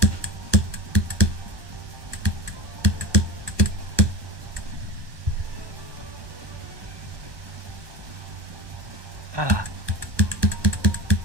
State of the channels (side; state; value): left; late; 1.1 ms